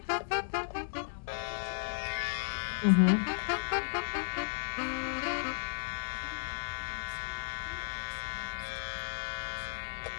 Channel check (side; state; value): right; silent; digital silence